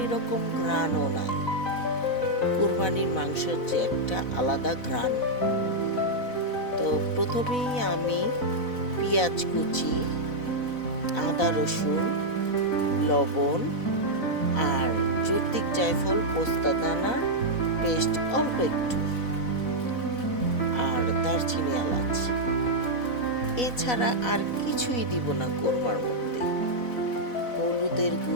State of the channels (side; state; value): right; late; 4.0 ms